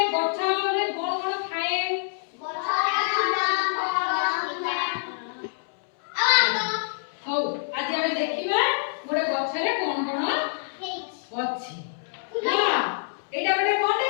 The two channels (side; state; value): right; silent; 61 dB below the other